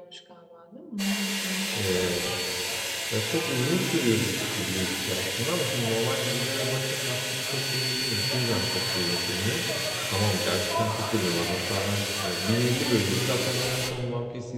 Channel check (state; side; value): identical; both; correlation 1.00